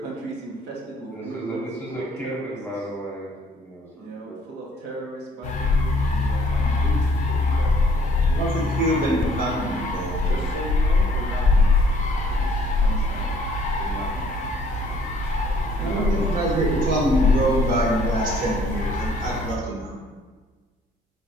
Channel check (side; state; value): both; normal; correlation 0.61